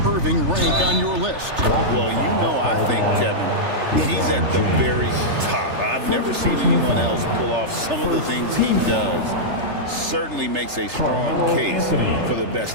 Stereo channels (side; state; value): left; late; 3.3 ms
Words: Irving rank on your list? Well, you know, I think, Kevin, he's at the very top. I've never seen anyone else pull off some of the things he does. Certainly makes a strong case for the